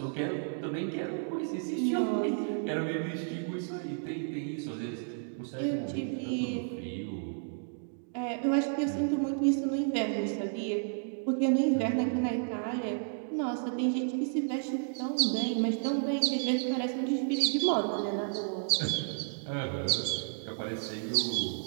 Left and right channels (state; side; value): silent; left; digital silence